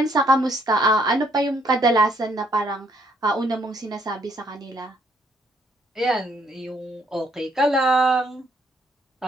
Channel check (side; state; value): both; normal; correlation 0.69